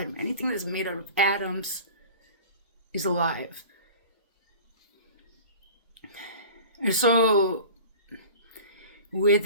anything that's made out of atoms is alive. And so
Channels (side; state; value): both; inverted; correlation -0.40